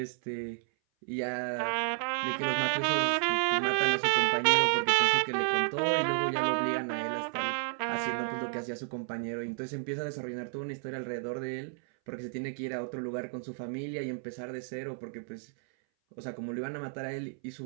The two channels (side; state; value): left; silent; 57 dB below the other